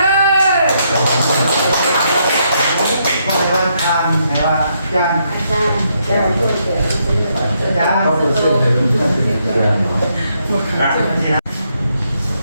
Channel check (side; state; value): both; inverted; correlation -0.76